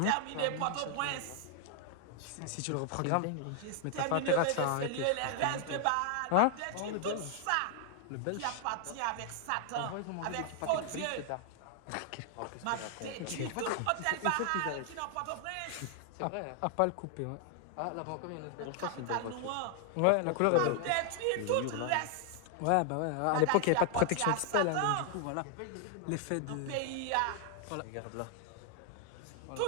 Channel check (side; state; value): both; different; correlation 0.00